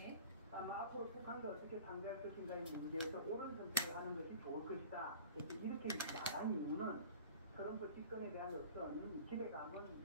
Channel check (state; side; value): inverted; both; correlation -0.42